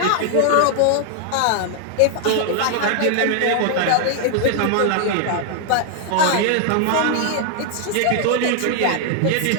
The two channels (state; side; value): different; both; correlation 0.00